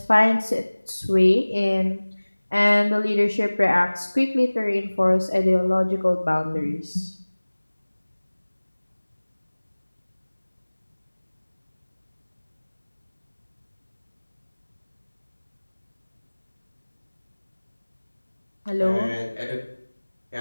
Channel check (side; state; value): both; inverted; correlation -1.00